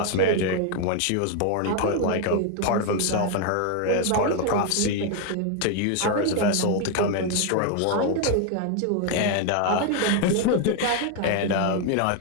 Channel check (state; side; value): different; both; correlation 0.01